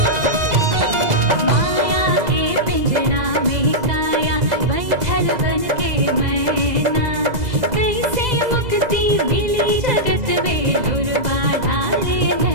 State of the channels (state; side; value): late; left; 2.0 ms